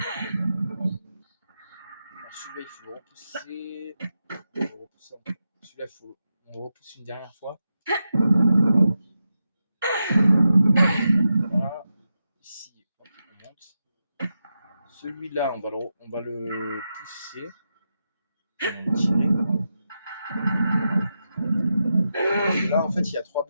celui-là, il faut le repousser. Celui-là, on le repousse une dernière fois. Voilà. Ici, hop, on monte. Celui-là, on va le pousser. On va le tirer. Parce que là, en fait, il y a 3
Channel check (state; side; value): inverted; both; correlation -0.88